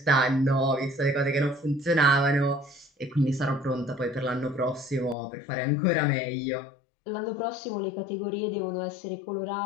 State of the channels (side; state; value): right; drops out; at 5.2 s